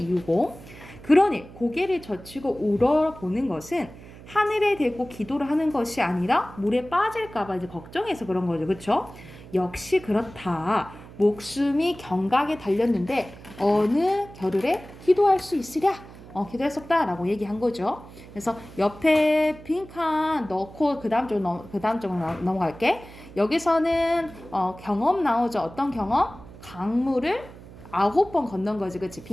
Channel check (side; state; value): right; noise; hum, 18 dB below the sound